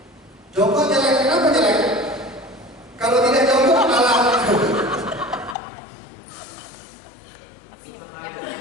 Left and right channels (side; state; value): right; drops out; at 5.6 s